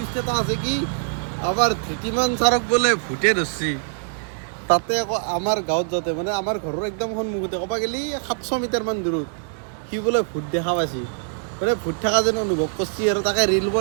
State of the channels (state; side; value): silent; left; digital silence